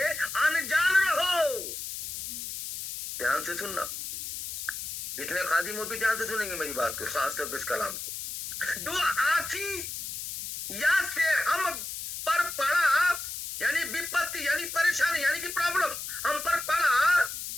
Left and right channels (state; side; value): noise; left; hiss, 7 dB below the sound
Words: अनजान रहो। ध्यान से सुनना, जितने खादिम हो भी ध्यान से सुनेंगे मेरी बात को, खासतौर पर इस कलाम को। जो आसी या से हम पर पड़ा, यानी विपत्ति, यानी परेशानी, यानी कि प्रॉब्लम हम पर पड़ा,